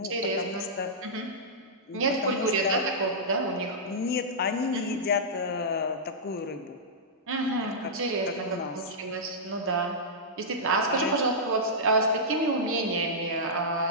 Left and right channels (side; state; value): both; normal; correlation -0.13